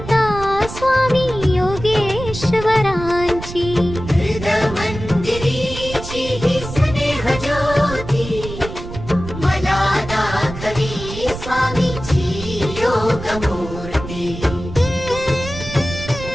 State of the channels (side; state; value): right; noise; rumble, 10 dB below the sound